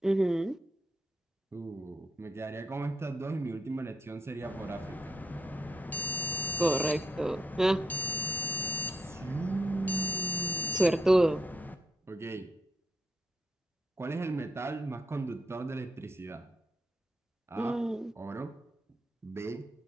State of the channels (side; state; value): both; normal; correlation 0.77